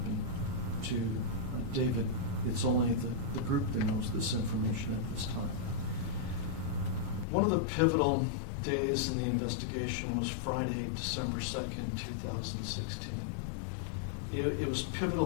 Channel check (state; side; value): drops out; right; at 7.2 s